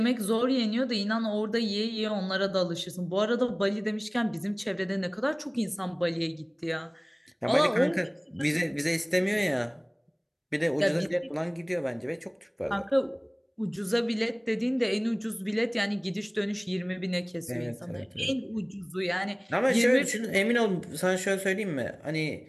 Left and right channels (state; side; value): identical; both; correlation 1.00